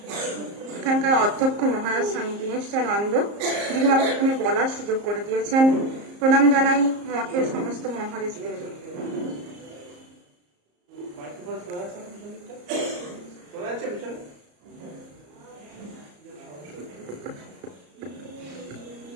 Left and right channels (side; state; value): left; late; 34 ms